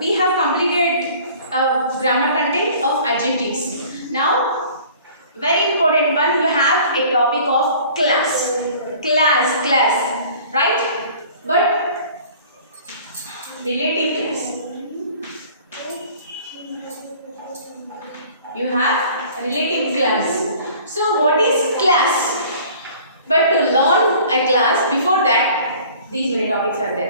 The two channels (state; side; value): inverted; both; correlation -0.49